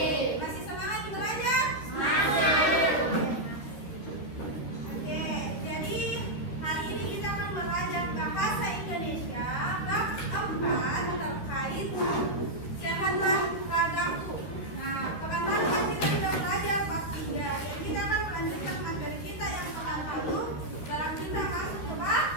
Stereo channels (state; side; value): late; right; 13 ms